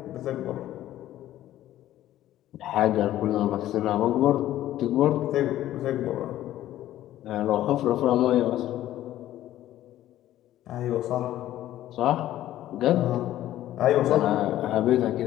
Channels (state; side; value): quieter; right; 13.5 dB